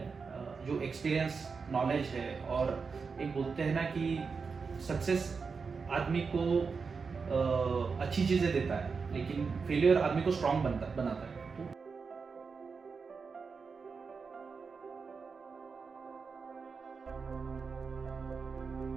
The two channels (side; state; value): left; quieter; 5.1 dB